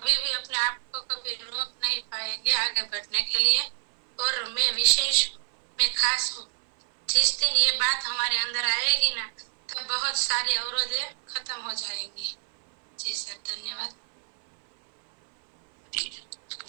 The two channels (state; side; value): silent; left; 57 dB below the other